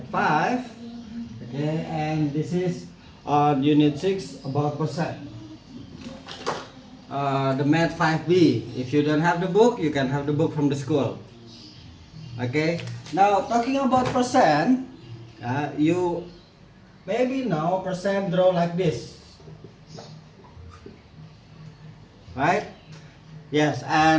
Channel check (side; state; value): both; identical; correlation 1.00